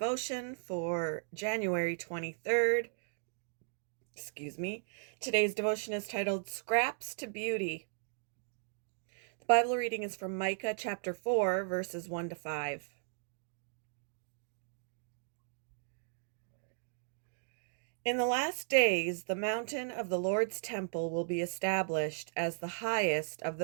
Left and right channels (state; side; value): silent; left; digital silence